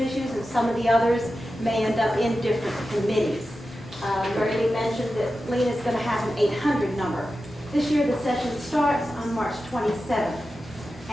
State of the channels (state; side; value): normal; both; correlation 0.92